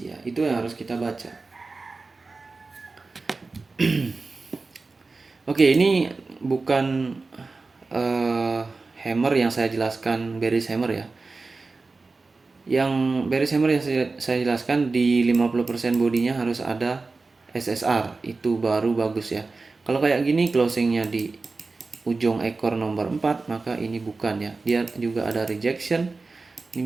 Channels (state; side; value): quieter; left; 3.8 dB